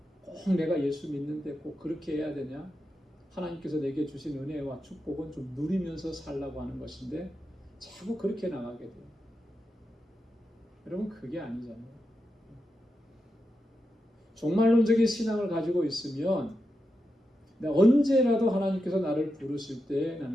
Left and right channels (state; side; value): normal; both; correlation 0.88